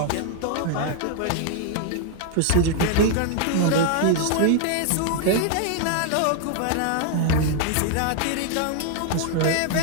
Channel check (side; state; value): both; different; correlation 0.00